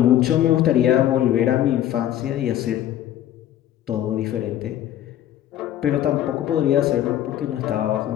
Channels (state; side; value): quieter; right; 12.0 dB